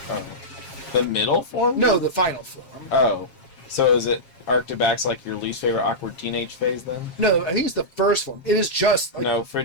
Oh. The middle form? No, the final form. Oh. So is it Arctibax like your least favorite awkward teenage phase then? No, I think it's the first form. It is just... Like, No,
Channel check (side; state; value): right; late; 7.4 ms